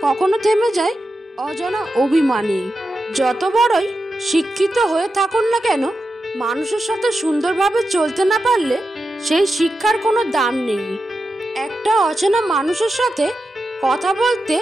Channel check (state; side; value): normal; both; correlation 0.90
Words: কখনো থেমে যায় অজানা অভিমানে। যত বড়ই শিক্ষিত হয়ে থাকুন না কেন, মানুষের সাথে সুন্দরভাবে চলতে না পারলে সেই শিক্ষার কোনো দাম নেই। একটা অচেনা মানুষের সাথে কথা বলতে